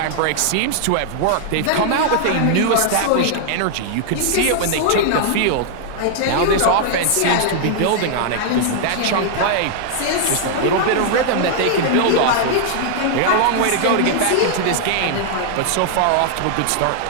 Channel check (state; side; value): different; both; correlation 0.00